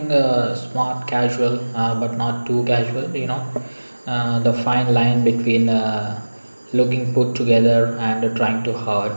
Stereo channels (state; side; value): inverted; both; correlation -1.00